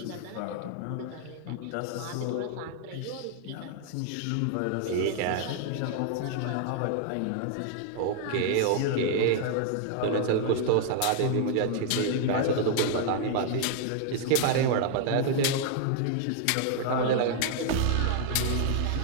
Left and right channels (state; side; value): different; both; correlation 0.00